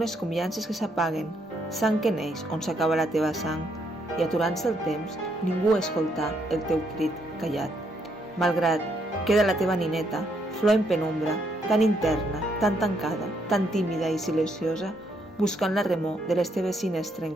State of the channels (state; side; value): normal; both; correlation 0.74